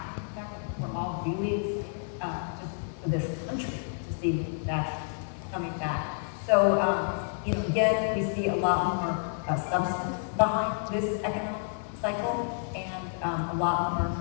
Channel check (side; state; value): right; silent; 58 dB below the other